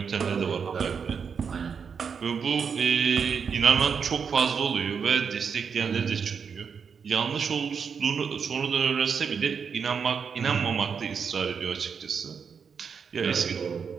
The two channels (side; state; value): left; quieter; 6.3 dB